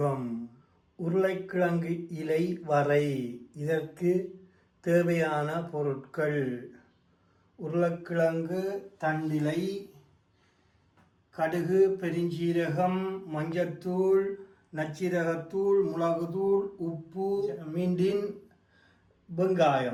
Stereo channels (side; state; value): both; identical; correlation 1.00